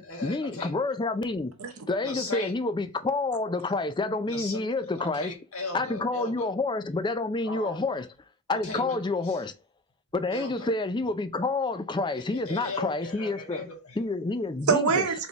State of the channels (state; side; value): normal; both; correlation 0.34